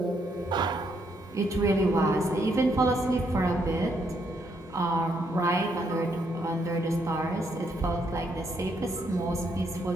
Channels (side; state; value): both; normal; correlation 0.74